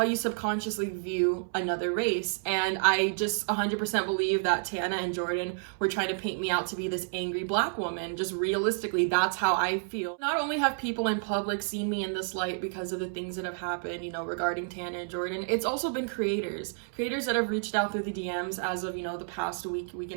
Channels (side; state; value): left; silent; 58 dB below the other